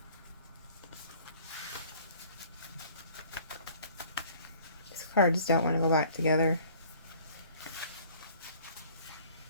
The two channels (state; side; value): inverted; both; correlation -0.53